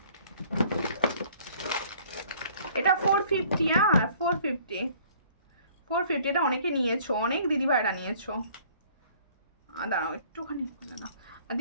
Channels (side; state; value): both; inverted; correlation -0.56